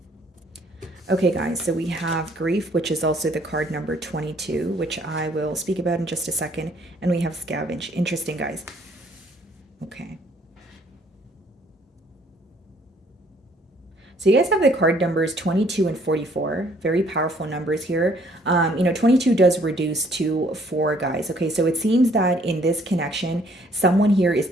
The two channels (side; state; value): both; normal; correlation 0.62